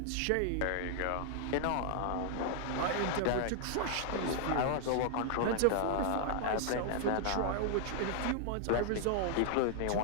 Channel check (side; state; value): both; different; correlation 0.00